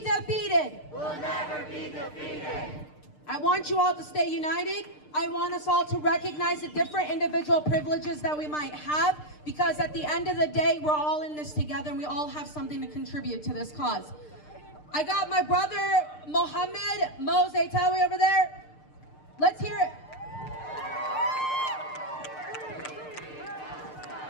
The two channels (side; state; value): right; late; 6.6 ms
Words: Will never be defeated. I want you all to stay united. I want us all to recognize the different individual privileges that we might have, because at the end of the day, we're all in this together and we all have something to contribute to this cause. I got my brother, Mohammed Mozetawi over there. Let's hear it.